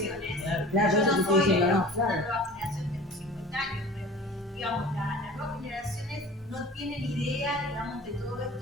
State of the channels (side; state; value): both; normal; correlation 0.41